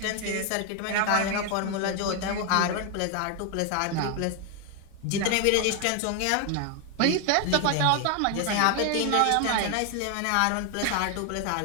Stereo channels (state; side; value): different; both; correlation 0.01